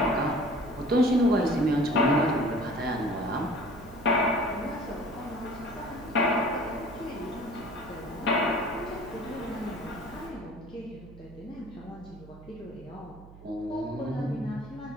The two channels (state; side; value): noise; right; hum, 19 dB below the sound